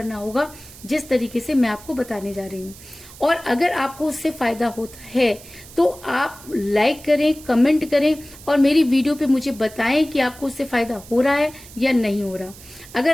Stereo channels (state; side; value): noise; right; hiss, 19 dB below the sound